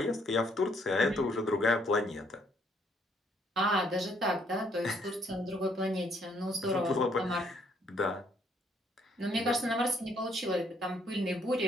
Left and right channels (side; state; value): both; normal; correlation 0.68